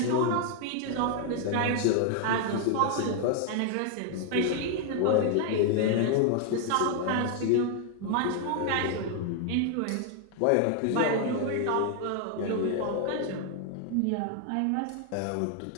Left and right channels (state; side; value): different; both; correlation 0.00